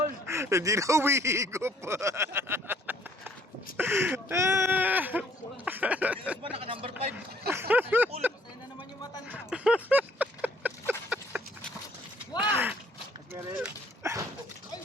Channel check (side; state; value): both; normal; correlation 0.61